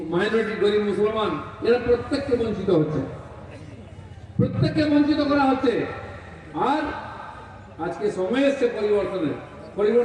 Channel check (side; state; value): both; identical; correlation 1.00